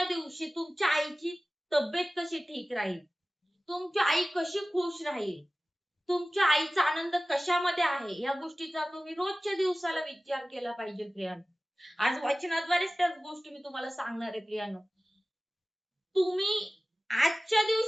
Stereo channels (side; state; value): both; normal; correlation 0.97